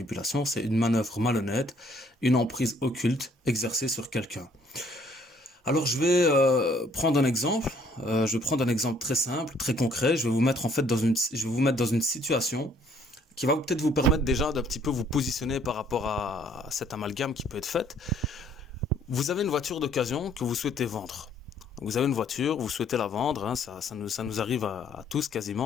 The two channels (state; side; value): normal; both; correlation 0.63